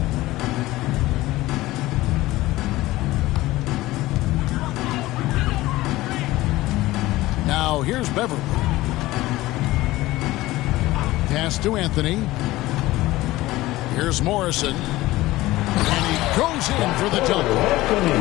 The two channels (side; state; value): right; quieter; 17.9 dB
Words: Now here's Beverly. Pass to Anthony. Here's Morrison. And he goes in for the dunk.